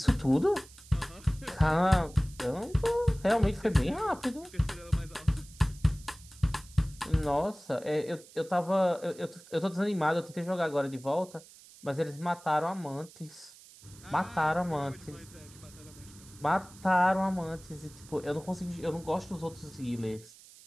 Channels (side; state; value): right; noise; hiss, 21 dB below the sound